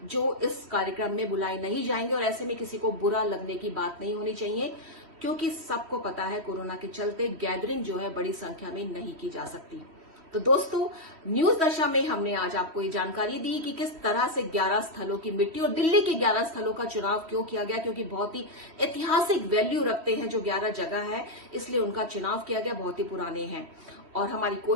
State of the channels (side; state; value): left; late; 3.2 ms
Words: जो इस कार्यक्रम में बुलाए नहीं जाएंगे। और ऐसे में किसी को बुरा लगने की बात नहीं होनी चाहिए, क्योंकि सबको पता है कोरोना के चलते गैदरिंग जो है बड़ी संख्या में नहीं की जा सकती। तो दोस्तों, न्यूज दशा में हमने आज आपको ये जानकारी दी कि किस तरह से 11 स्थलों की मिट्टी और दिल्ली के 11 स्थलों का चुनाव क्यों किया गया, क्योंकि बहुत ही ऐतिहासिक वैल्यू रखते हैं जो 11 जगह है, इसलिए उनका चुनाव किया गया, बहुत ही पुराने हैं। और हमारी